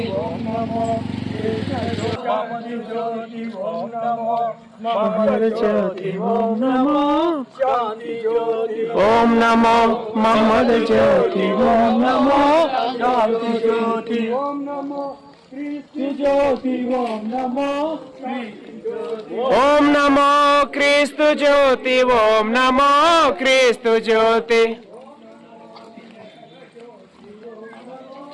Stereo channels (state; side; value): identical; both; correlation 1.00